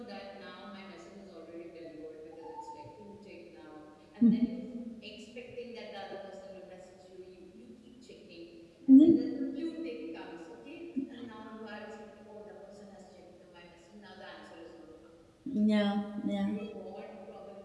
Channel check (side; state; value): both; identical; correlation 1.00